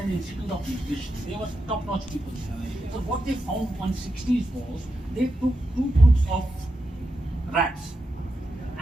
institute of nutrition. They were top-notch people. So what they found on 60s was they took 2 groups of rats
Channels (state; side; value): normal; both; correlation 0.87